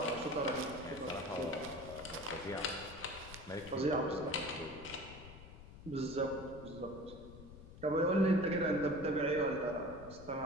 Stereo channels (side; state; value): left; noise; rumble, 15 dB below the sound